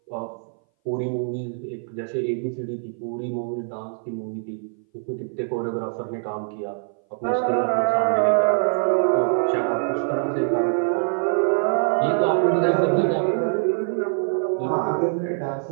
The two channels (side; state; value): left; silent; 59 dB below the other